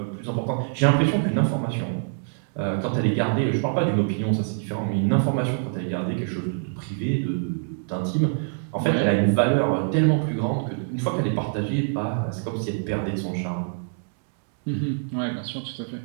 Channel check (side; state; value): left; silent; digital silence